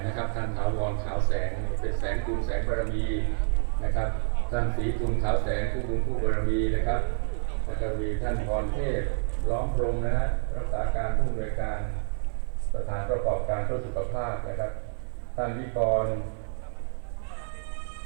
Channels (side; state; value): left; silent; 59 dB below the other